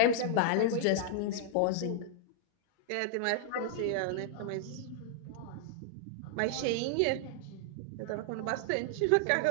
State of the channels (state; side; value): different; both; correlation -0.01